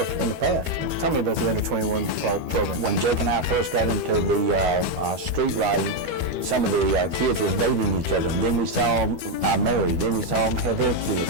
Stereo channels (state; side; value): late; left; 13 ms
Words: in the past. Tell me about the under 21 program. When Jake and I first got into the street riding, some of the kids was dating each other, and then we saw them married, then we saw them have their